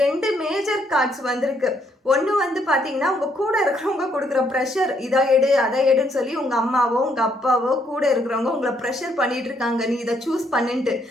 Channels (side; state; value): both; normal; correlation 0.71